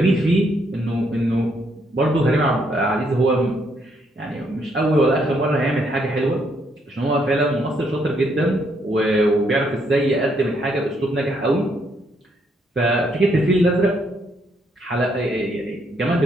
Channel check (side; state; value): both; normal; correlation 0.73